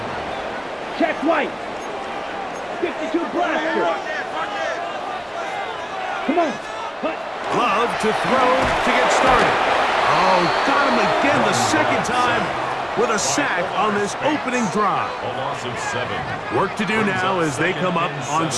Check White. 52 blaster. Come on. Cut. Love to throw to get started. Oh, got him again the second time with a sack on this opening drive. A loss of 7. Work to do now as they come up on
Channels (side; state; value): both; identical; correlation 1.00